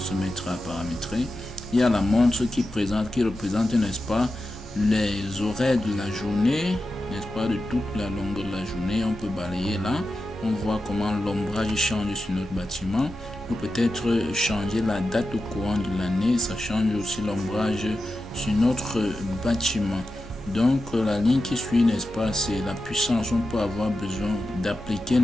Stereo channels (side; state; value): both; normal; correlation 0.91